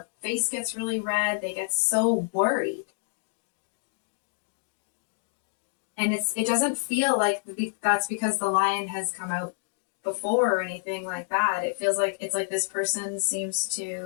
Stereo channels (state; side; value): silent; right; digital silence